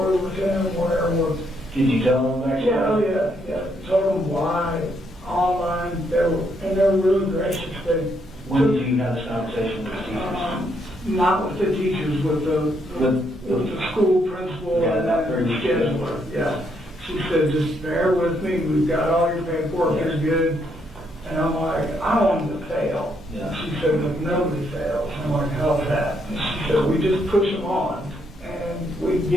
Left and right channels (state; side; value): normal; both; correlation 0.74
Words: with him, where was. Did you tell him that? Yeah. Told them why, online, they were really gracious. They When did you have this conversation with the teachers? Not with the teachers, with the school principal Yeah, and about the 30 scheduler, yeah. She said, just bear with me, we've got all your paperwork, it's good. And I'm like, I don't want them to fail. Yeah. She said, look, nobody fails. I'm like, how's that? And she said, we just push them on, and we